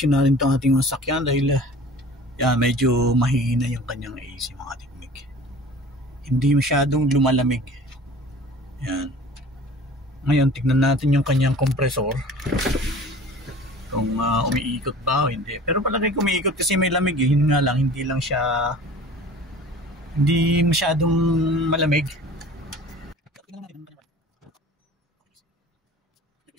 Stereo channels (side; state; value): both; normal; correlation 0.44